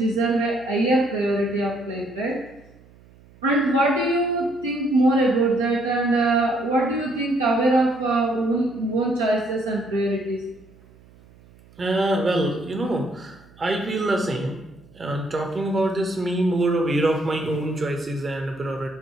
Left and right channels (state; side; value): noise; right; hum, 26 dB below the sound